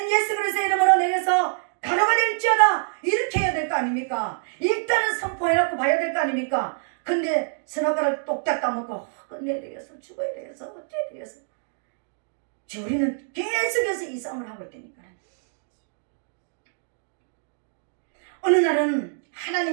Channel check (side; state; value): left; silent; 61 dB below the other